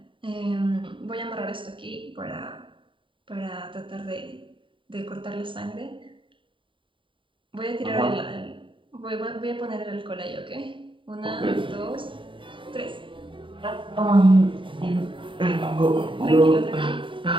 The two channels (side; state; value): left; late; 0.25 ms